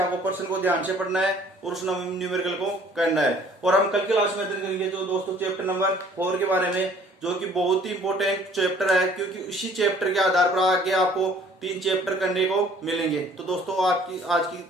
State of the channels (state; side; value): normal; both; correlation 0.55